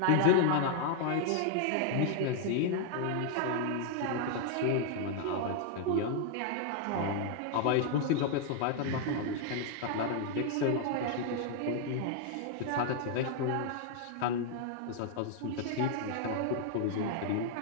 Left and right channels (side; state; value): both; different; correlation 0.00